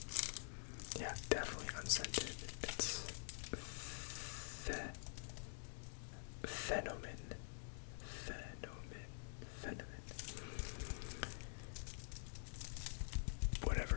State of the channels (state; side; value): silent; right; digital silence